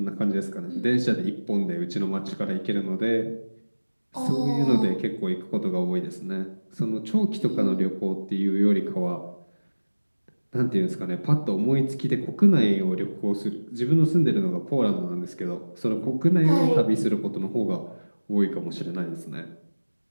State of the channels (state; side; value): inverted; both; correlation -1.00